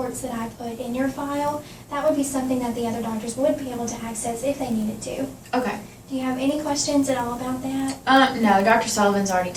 that I put in your file, that would be something that the other doctors would be able to access if they needed to. Okay. Do you have any questions at all about that? No, Dr. Sullivan's already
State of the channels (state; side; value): identical; both; correlation 1.00